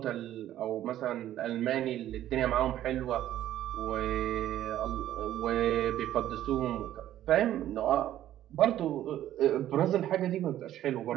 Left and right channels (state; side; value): quieter; left; 12.6 dB